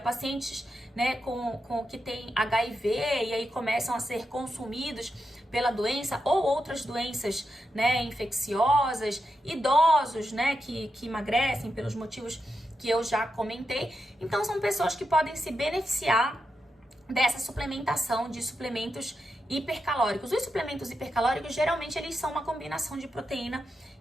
né, com que tem HIV e aí começam a ser consumidos pela doença ou outras doenças, né, infecciosas, idosos, né, que emagrecem pelos motivos que eu já comentei. Então, são pessoas que podem se beneficiar dessa suplementação de suplementos hipercalóricos. Os suplementos hipercalóricos, geralmente, eles são uma combinação de proteína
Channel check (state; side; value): normal; both; correlation 0.87